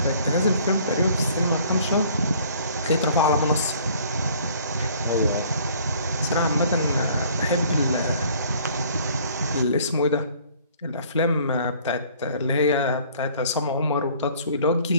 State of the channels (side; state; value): both; inverted; correlation -0.56